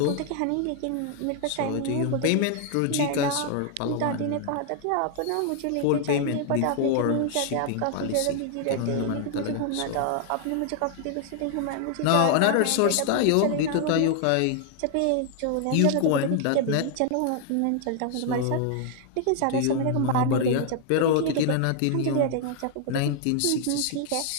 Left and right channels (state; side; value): different; both; correlation 0.00